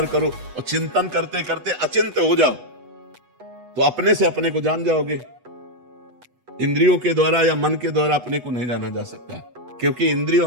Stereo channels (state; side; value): late; left; 8.1 ms